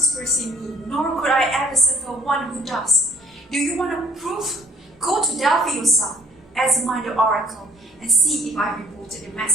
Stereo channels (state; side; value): normal; both; correlation 0.58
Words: in me, nor could I ever suffer one who does. Do you want a proof? Go to Delphi yourself, examine the oracle, and see if I reported the